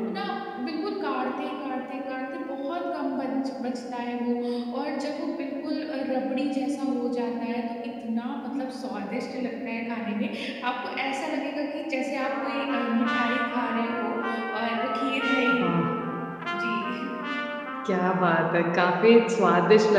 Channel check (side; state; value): both; identical; correlation 1.00